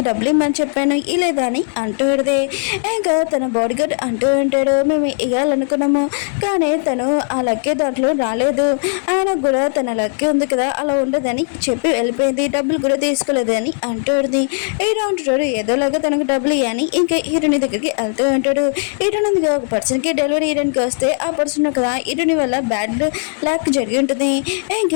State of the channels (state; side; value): silent; right; digital silence